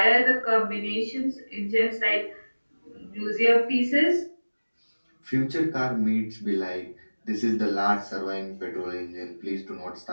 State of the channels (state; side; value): inverted; both; correlation -1.00